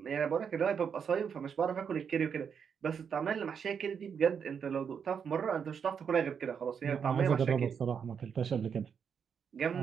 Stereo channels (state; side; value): quieter; left; 7.0 dB